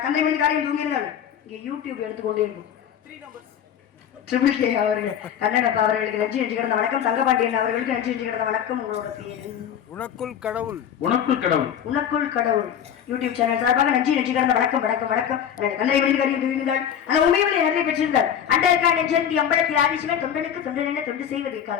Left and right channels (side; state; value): right; quieter; 9.1 dB